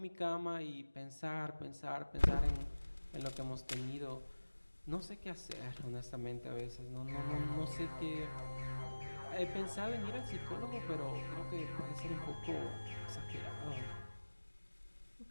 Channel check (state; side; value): inverted; both; correlation -1.00